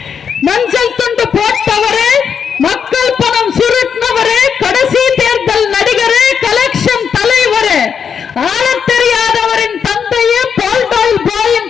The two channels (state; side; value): quieter; right; 7.0 dB